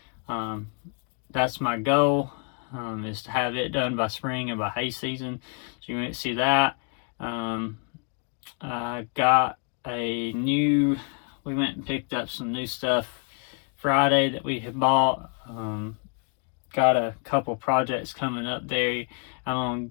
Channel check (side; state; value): right; quieter; 38.5 dB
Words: That's my goal, is to have it done by spring and by hay season. So you might see that. I got we went and picked up some new stuff Friday that we had bought. Got a couple projects coming up there. I'm going